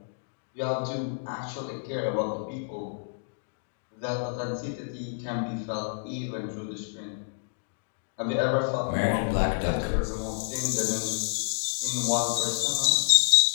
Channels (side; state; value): right; silent; digital silence